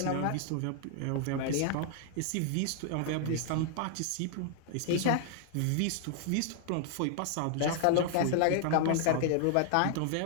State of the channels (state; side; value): different; both; correlation -0.01